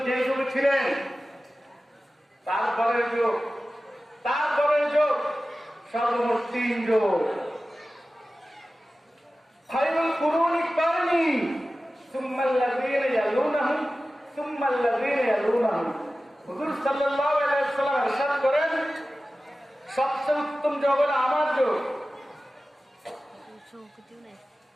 যে যুগে ছিলেন তারপরের যুগ সর্বমোট 3 যুগ। খায়রুল কুরুনি কারনি সুম্মাল্লাযীনা ইয়ালুনাহুম সুম্মাল্লাযীনা ইয়ালুনাহুম। হুজুর সাল্লাল্লাহু আলাইহি ওয়াসাল্লাম ইরশাদ করেন, সবচেয়ে উত্তম যুগ হলো আমার যুগ,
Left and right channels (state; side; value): normal; both; correlation 0.95